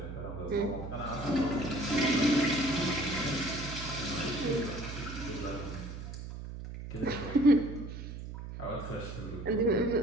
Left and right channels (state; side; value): noise; right; hum, 9 dB below the sound